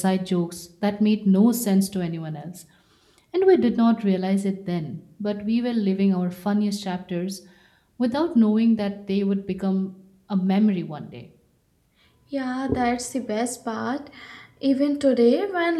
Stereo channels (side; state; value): both; identical; correlation 1.00